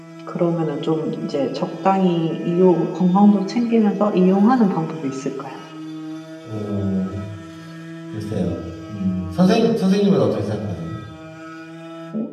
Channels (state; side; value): identical; both; correlation 1.00